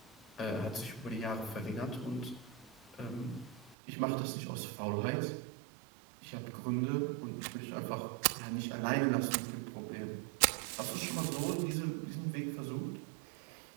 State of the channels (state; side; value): drops out; left; at 3.8 s